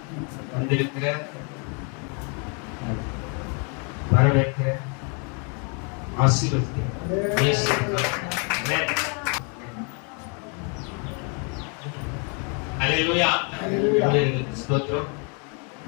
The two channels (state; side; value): quieter; right; 36.7 dB